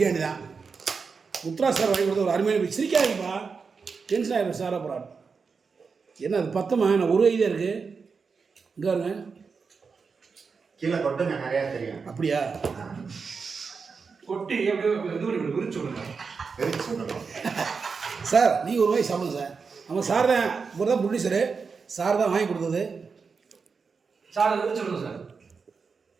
தான். முத்ரா சார் வாங்கி கொடுத்த ஒரு அருமையான சிரிக்காதுப்பா, டென்ஷன் ஆகிடும் சார். அப்புறம் என்ன அது பத்தமா, நான் ஒரு ஐடியா இருக்குது இங்கே வருங்க கீழே கொட்டுங்க, நிறையா தெரியும். அப்படியா? கொட்டி எப்படியோ விரிச்சு சார் நீங்கள் ஒரு வாய் சாப்பிடுங்க சார். நம்ம சார் தான், இவர் தான் ப்ரொடியூசரு, சார் தான் வாங்கி கொடுத்தது. சார் விரிச்சு விடுங்க சார்.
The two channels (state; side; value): quieter; left; 5.2 dB